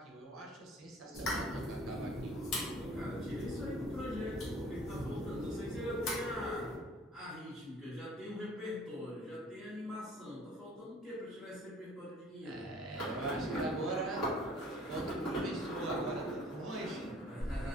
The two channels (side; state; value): both; normal; correlation 0.52